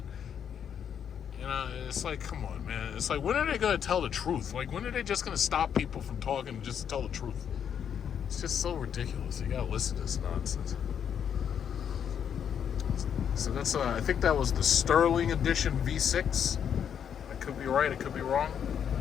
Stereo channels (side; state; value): right; quieter; 8.3 dB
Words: You know, it's like, come on, man. It's like, when are they going to tell the truth? Like, when are they just going to stop people from talking just to tell the truth? It's just so ridiculous. You got to listen to this nonsense. So that's, I think that was the Sterling Edition V6. I could be right, I could be wrong.